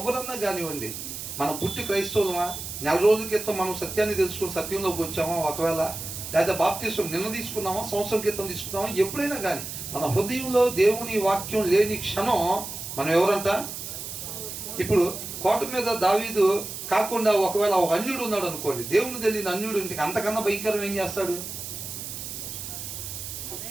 కానివ్వండి. మనం పుట్టి క్రైస్తవులమా, నెల రోజుల క్రితం మనం సత్యాన్ని తెలుసుకుని సత్యంలోకి వచ్చామా, ఒకవేళ లేదా బాప్తిసం నిన్న తీసుకున్నామా, సంవత్సరం క్రితం తీసుకున్నామా, ఎప్పుడైనా కానీ మన హృదయంలో దేవుని వాక్యం లేని క్షణం మనం ఎవరంట? ఇప్పుడు కోట మీద దావీదు కాకుండా ఒకవేళ ఒక అన్యుడు ఉన్నాడు అనుకోండి, దేవుని తెలియని అన్యుడు ఇంటికి అంతకన్నా భయంకరం ఏం చేస్తాడు?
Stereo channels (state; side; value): noise; right; hiss, 8 dB below the sound